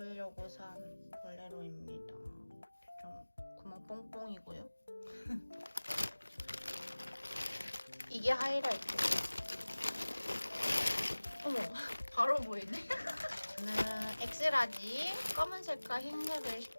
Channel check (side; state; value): both; inverted; correlation -1.00